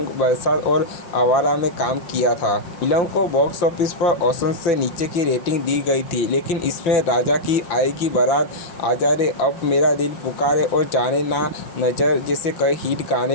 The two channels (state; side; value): late; right; 5.7 ms